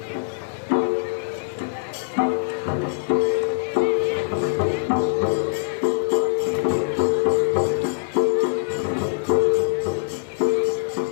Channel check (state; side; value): silent; right; digital silence